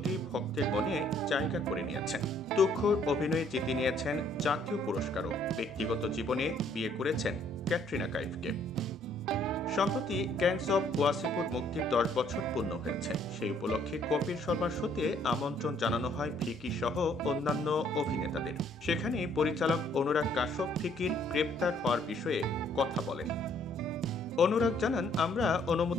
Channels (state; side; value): normal; both; correlation 0.64